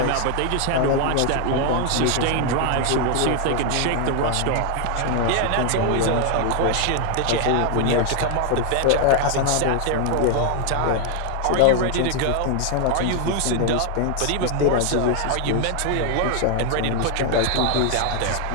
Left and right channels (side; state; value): both; different; correlation 0.00